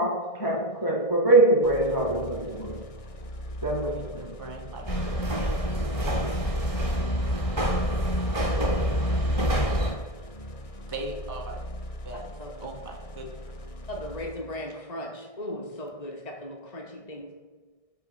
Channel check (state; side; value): late; right; 1.6 ms